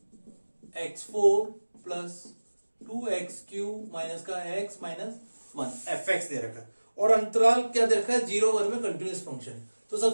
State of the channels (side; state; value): both; inverted; correlation -1.00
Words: x4 प्लस 2x³ माइनस का x माइनस 1 fx दे रखा है, और अंतराल क्या दे रखा है? 0-1 में कंटिन्यूअस फंक्शन है। तो